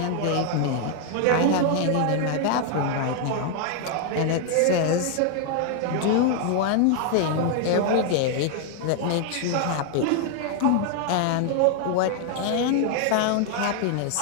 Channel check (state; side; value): different; both; correlation 0.00